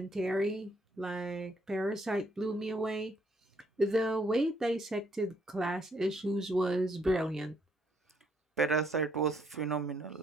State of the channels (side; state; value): both; normal; correlation 0.69